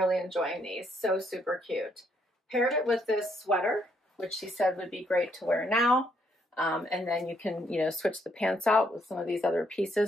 enjoying these. So super cute. Paired it with this sweater, which she said would be great to wear now. And then you can, you know, switch the pants out with some of these other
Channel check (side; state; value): both; normal; correlation 0.72